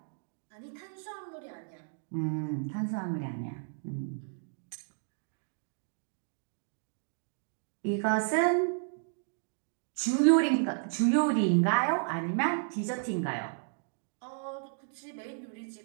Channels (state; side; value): silent; left; digital silence